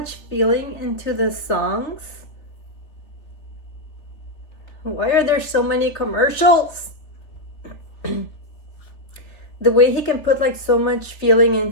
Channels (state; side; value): late; right; 3.2 ms